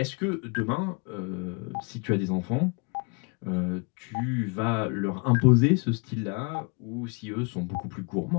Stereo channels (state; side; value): quieter; right; 32.9 dB